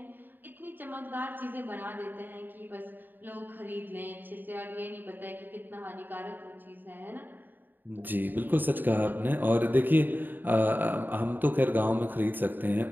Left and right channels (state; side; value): late; left; 0.091 ms